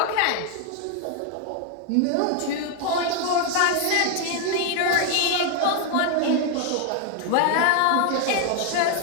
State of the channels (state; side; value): different; both; correlation 0.01